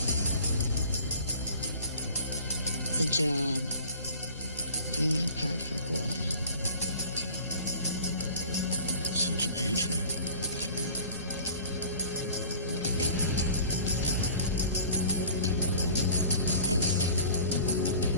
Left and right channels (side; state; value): both; inverted; correlation -0.43